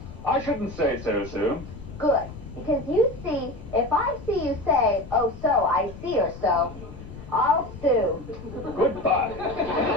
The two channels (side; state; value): left; noise; rumble, 14 dB below the sound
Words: I shouldn't say so, Sue. Good. Because you see, if I see you say, oh, so, I see or so, I'll sue. Goodbye.